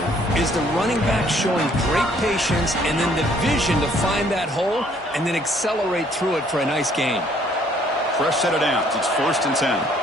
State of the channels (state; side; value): normal; both; correlation 0.62